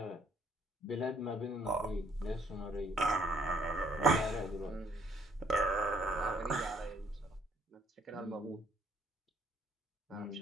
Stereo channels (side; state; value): both; normal; correlation 0.65